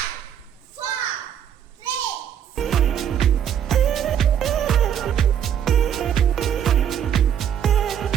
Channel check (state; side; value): quieter; left; 9.2 dB